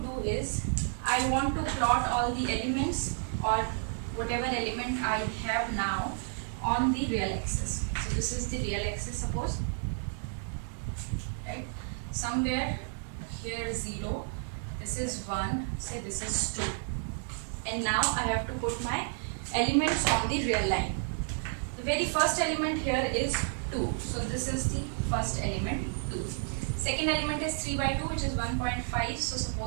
do is I want to plot all the elements or whatever element I have now on the real axis. So this is the real axis, suppose, right? Somewhere here 0, this is 1, say this is 2, and now I have to put my elements on the real line. The very first element here is 2, so this is the first element, 2. Second element is 3 by 2, which is 1.5, so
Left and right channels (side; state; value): left; silent; 57 dB below the other